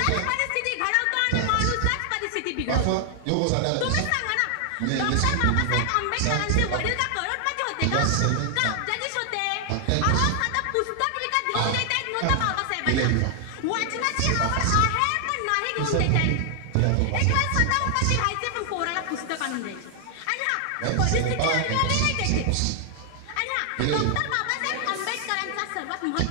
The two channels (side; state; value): both; different; correlation 0.00